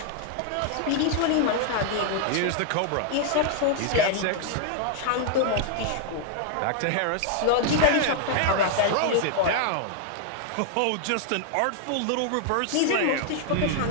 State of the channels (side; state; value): both; different; correlation 0.00